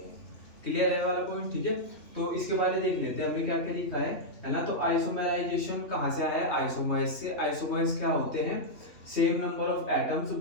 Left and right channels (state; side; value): late; right; 3.4 ms